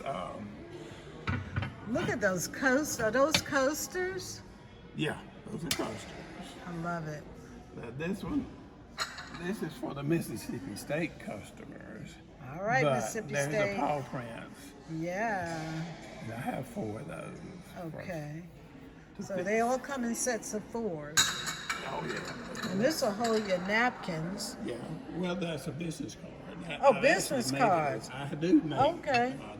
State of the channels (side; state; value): both; identical; correlation 1.00